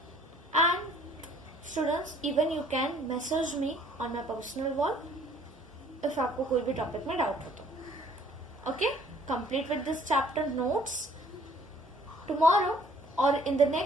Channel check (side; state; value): both; normal; correlation 0.58